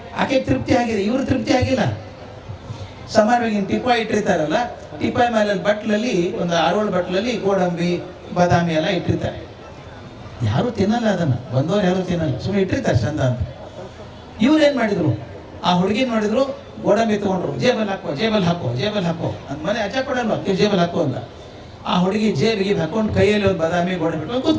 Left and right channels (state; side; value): identical; both; correlation 1.00